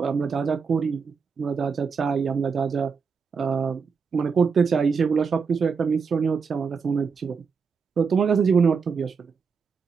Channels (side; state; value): left; quieter; 5.6 dB